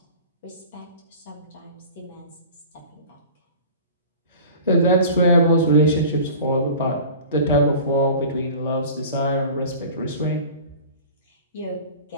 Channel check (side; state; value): both; inverted; correlation -0.40